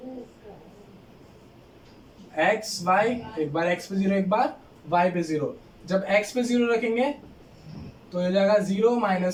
x y, एक बार x पे 0, एक बार y पे 0, जब x पे 0 रखेंगे तो ये जाएगा 0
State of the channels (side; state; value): both; identical; correlation 1.00